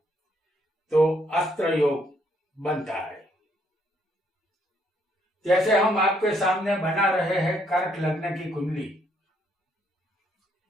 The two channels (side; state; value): both; normal; correlation 0.70